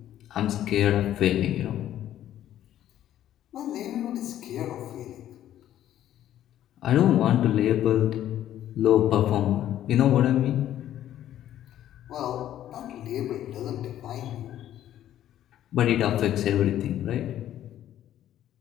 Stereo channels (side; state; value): right; quieter; 11.9 dB